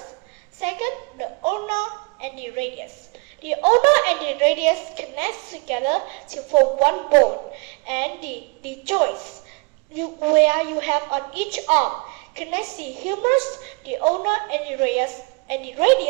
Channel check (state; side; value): quieter; left; 29.6 dB